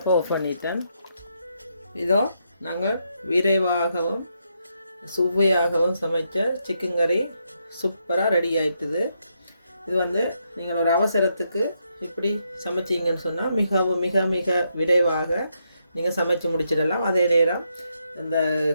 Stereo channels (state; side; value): inverted; both; correlation -0.79